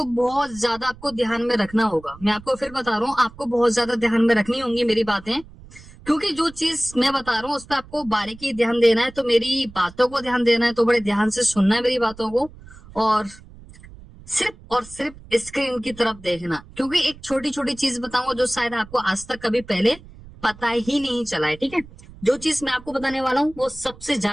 बहुत ज्यादा आपको ध्यान में रखना होगा। मैं आपको फिर बता रहा हूँ, आपको बहुत ज्यादा ध्यान में रखनी होंगी मेरी बातें, क्योंकि जो चीज मैं बता रहा हूँ उस पर आपको बारीकी ध्यान देना है। तो मेरी बातों को ध्यान देना है, तो बड़े ध्यान से सुनना है मेरी बातों को, और सिर्फ स्क्रीन की तरफ देखना, क्योंकि एक छोटी छोटी चीज बताऊंगा जो शायद आपको आज तक कभी पहले पता ही नहीं चला है। ठीक है, जो चीज मैं आपको बताने वाला हूँ वो सबसे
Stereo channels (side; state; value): right; noise; rumble, 20 dB below the sound